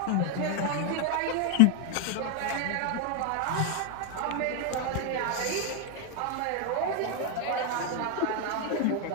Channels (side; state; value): both; different; correlation 0.01